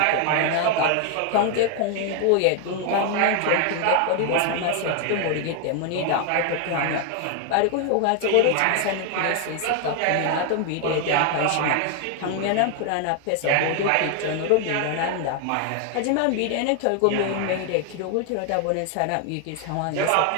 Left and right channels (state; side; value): different; both; correlation 0.00